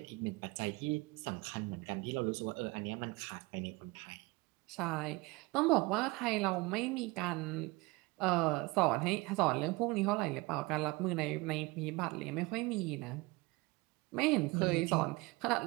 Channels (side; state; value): left; quieter; 23.7 dB